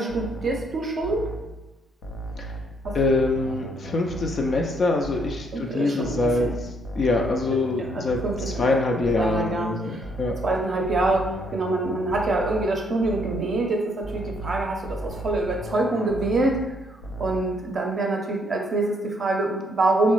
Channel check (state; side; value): normal; both; correlation 0.69